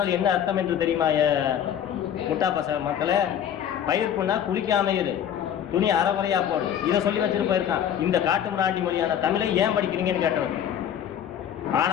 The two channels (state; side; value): quieter; right; 9.5 dB